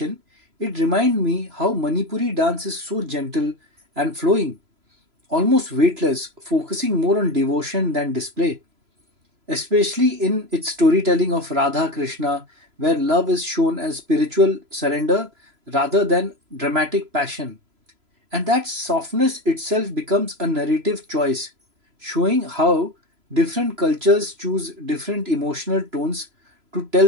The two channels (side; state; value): left; late; 3.0 ms